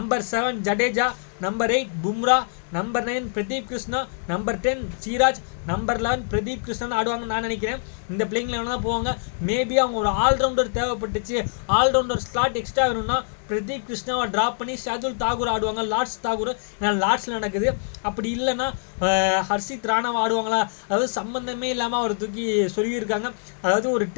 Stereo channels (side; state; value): right; silent; digital silence